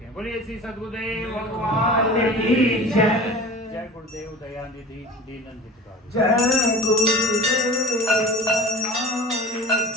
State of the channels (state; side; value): normal; both; correlation 0.38